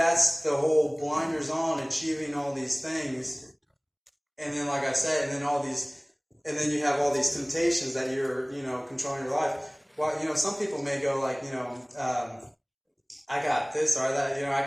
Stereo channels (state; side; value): identical; both; correlation 1.00